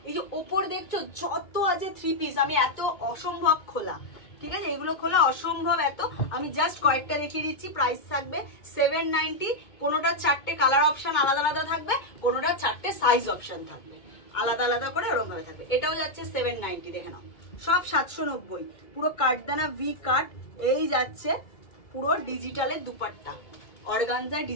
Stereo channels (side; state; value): right; late; 2.2 ms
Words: এই যে ওপর দেখছো যত আছে 3 পিস, আমি এত অসম্ভব খোলা, ঠিক আছে, এগুলো খোলা অসম্ভব এত। আমি জাস্ট কয়েকটা দেখিয়ে দিচ্ছি। প্রাইস থাকবে 790। কোনোটা 4টে কালার অপশন আলাদা আলাদা থাকবে, কোনোটা 4টে সাইজ অপশন থাকবে আলাদা আলাদা করে, ওরকম ভাবে থাকবে। এটাও যাচ্ছে 790, দেখে নাও সব 790। পুরো কাটদানা ভি কাট। এই যাচ্ছে পুরো ডিজিটালের দুপাট্টা, অর্গানজা